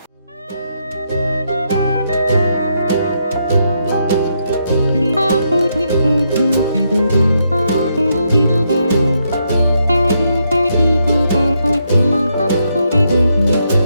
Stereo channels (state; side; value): inverted; both; correlation -0.78